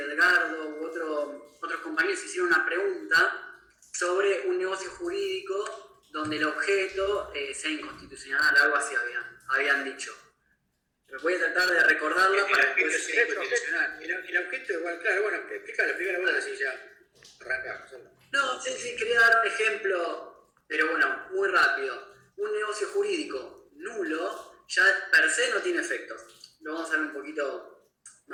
u otros compañeros hicieron una pregunta sobre un negocio jurídico donde el objeto sea inconstitucional, algo así habían dicho. Pero voy a tratar de recordarlo para que después... sea inconstitucional. El objeto igual, claro, bueno, explícalo vos, así ya arrancamos. No, sí, quería dar un ejemplo, pero bueno, muy rápido. Un negocio jurídico nulo ya per se no tiene efecto. Lo vamos a ver un poquito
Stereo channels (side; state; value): both; identical; correlation 1.00